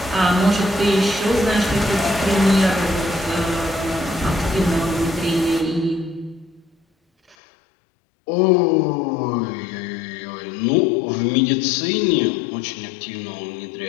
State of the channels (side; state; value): right; drops out; at 7.4 s